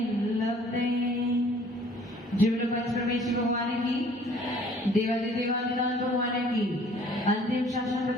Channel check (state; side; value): normal; both; correlation 0.55